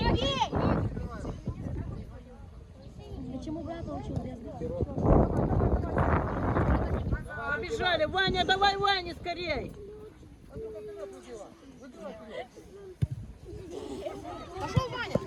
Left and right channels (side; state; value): both; identical; correlation 1.00